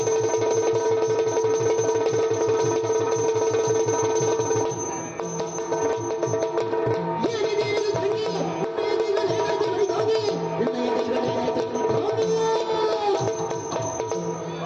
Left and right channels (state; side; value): identical; both; correlation 1.00